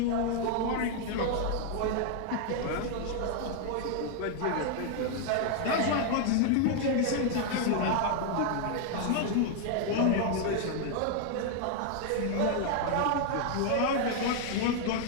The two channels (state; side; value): different; both; correlation 0.00